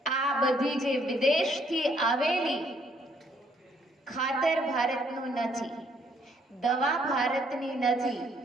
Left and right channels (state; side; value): normal; both; correlation 0.67